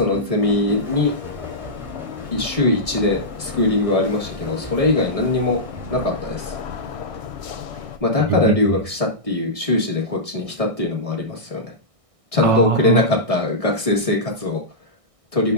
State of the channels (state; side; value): late; left; 1.6 ms